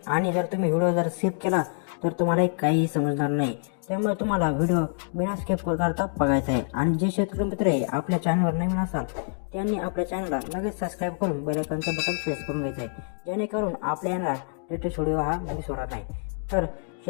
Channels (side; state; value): right; silent; 61 dB below the other